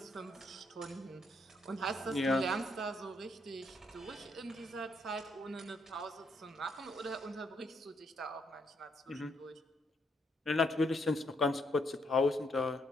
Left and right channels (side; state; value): both; normal; correlation 0.74